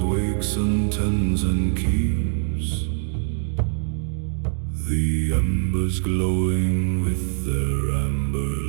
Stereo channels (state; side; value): silent; left; digital silence